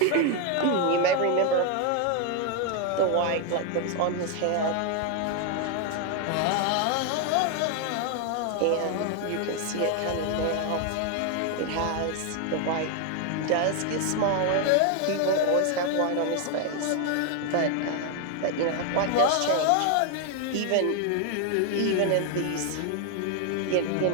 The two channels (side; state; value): both; different; correlation 0.01